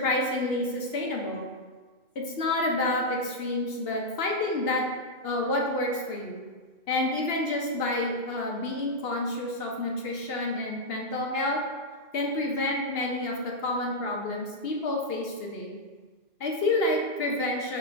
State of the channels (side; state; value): right; late; 2.8 ms